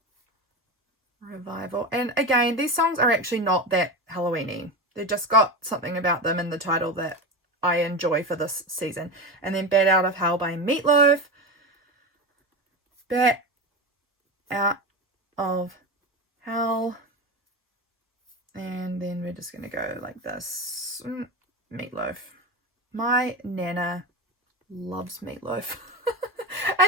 Revival. And again, these songs are actually not that Halloween-y. They've just got something about them in the title that I enjoy for this season. And then Bad Out of Hell by Meatloaf. Bad Out of Hell. And then we're just going to go like this. Meatloaf. My Nana loves Meatloaf.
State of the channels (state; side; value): normal; both; correlation 0.21